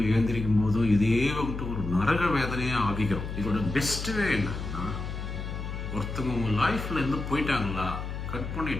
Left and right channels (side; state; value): left; noise; hum, 6 dB below the sound